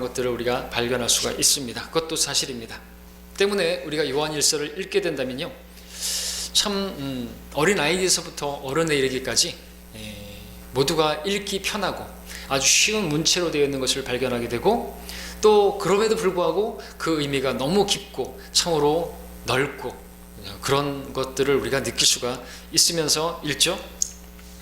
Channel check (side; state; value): both; identical; correlation 1.00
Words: 것들을 우리가 발견할 수가 있습니다. 그것도 사실입니다. 때문에 우리가 요한일서를 읽게 된다면요, 참 어린 아이에서부터 어른에 이르기까지 모두가 읽기 편하고 아주 쉬운 문체로 되어 있는 것을 발견하게 되고, 또 그럼에도 불구하고 그 의미가 너무 깊고 참으로 넓고 그런 것들을 우리가 느낄 수가 있으면서 읽죠.